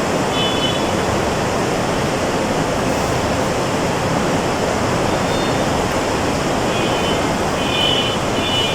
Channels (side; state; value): both; identical; correlation 1.00